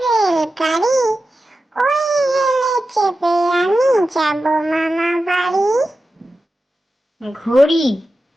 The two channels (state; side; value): normal; both; correlation 0.92